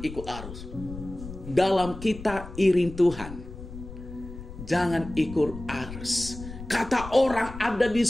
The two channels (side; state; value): left; noise; rumble, 12 dB below the sound